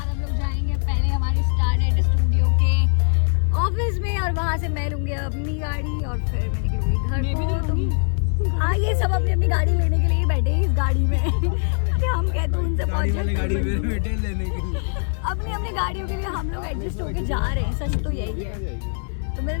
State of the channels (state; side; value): silent; right; 64 dB below the other